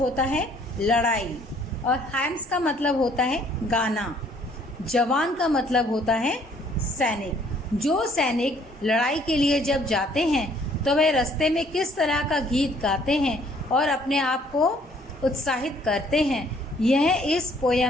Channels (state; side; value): normal; both; correlation 0.61